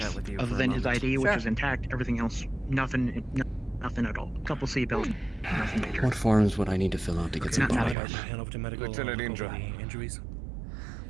other than his ID, which was intact. Everything else, nothing at all. A couple seatbelts, nothing major. What forms would I need to fill out to get some body armor? Hand over to medical. Lieutenant Indra. Injuries.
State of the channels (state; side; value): drops out; left; at 8.0 s